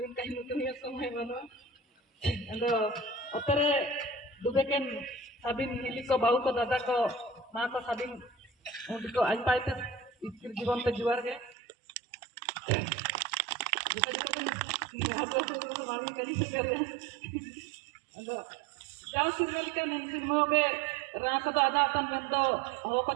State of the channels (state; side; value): drops out; left; at 11.6 s